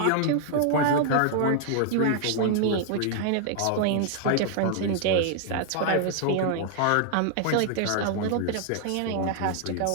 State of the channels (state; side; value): different; both; correlation 0.00